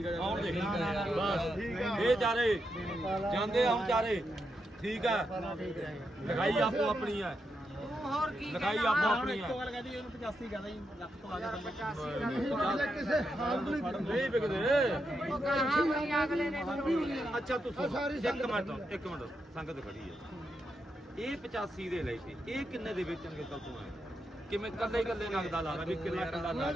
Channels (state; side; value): normal; both; correlation 0.84